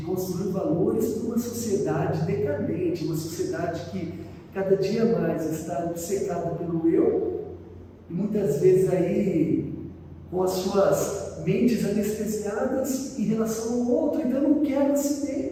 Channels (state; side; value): identical; both; correlation 1.00